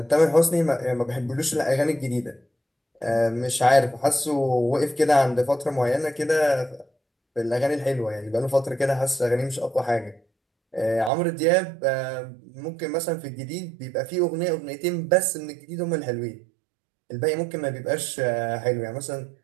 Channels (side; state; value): left; drops out; at 11.1 s